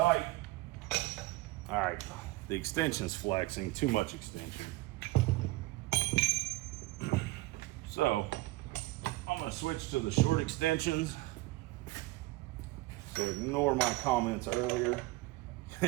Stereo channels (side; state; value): left; quieter; 20.1 dB